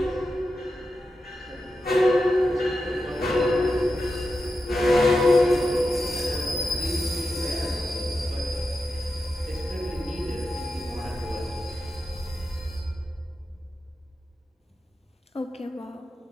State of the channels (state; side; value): normal; both; correlation 0.89